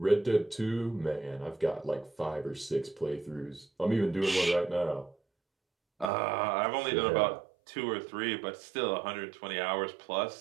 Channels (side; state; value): left; drops out; at 6.1 s